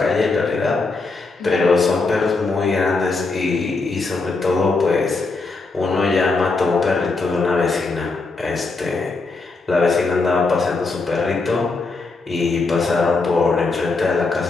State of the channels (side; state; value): right; quieter; 3.8 dB